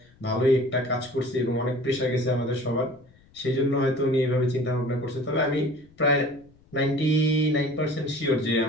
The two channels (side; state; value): left; noise; rumble, 29 dB below the sound